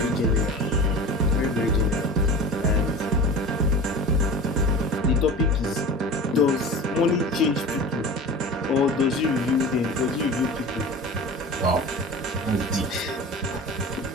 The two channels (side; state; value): both; normal; correlation 0.34